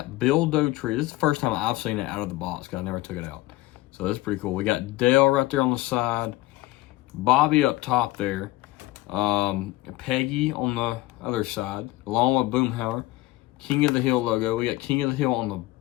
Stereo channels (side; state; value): right; quieter; 18.4 dB